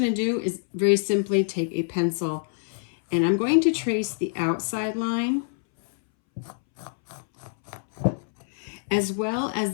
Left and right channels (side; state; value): right; silent; 61 dB below the other